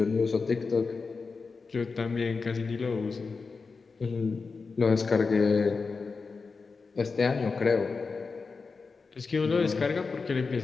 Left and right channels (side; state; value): right; quieter; 4.6 dB